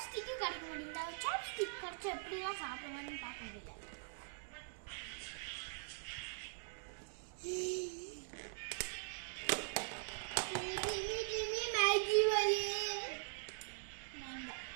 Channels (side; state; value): left; silent; digital silence